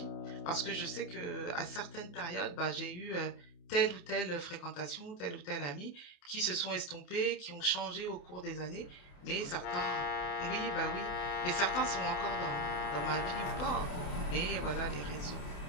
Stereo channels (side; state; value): right; late; 28 ms